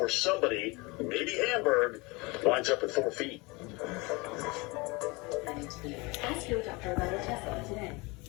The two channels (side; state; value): right; quieter; 25.7 dB